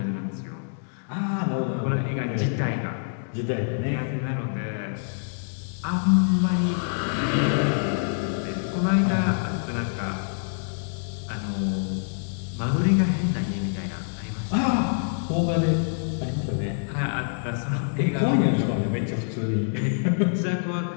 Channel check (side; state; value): right; silent; digital silence